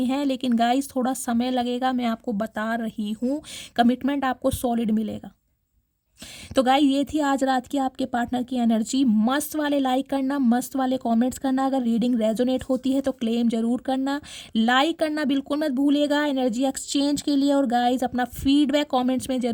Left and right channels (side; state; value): both; identical; correlation 1.00